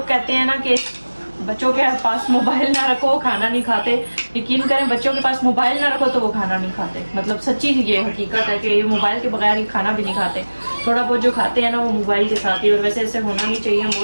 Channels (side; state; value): both; inverted; correlation -1.00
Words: कहते हैं ना कि बच्चों के पास मोबाइल ना रखो खाना नहीं खाते, यकीन करें बच्चों के पास मोबाइल ना रखो तो वो खाना नहीं खाते। मतलब सच्ची ये हकीकत है कि ये मोबाइल के बगैर ही खाना भी नहीं खाते। थोड़ा बहुत जो खाते हैं ना वो मोबाइल के साथ ही। और वैसे ऐसे होना नहीं चाहिए। हम